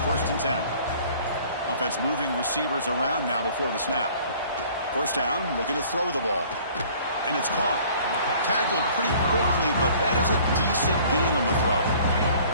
first and 10. Offense moving receivers around now before the snap. First down, looking to throw the ball. And it's caught. Tackled pretty quickly, but that is a decent gain on the throw.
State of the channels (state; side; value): inverted; both; correlation -0.52